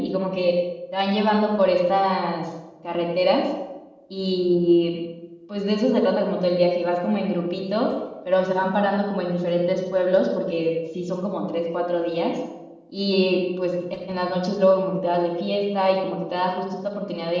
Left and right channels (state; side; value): identical; both; correlation 1.00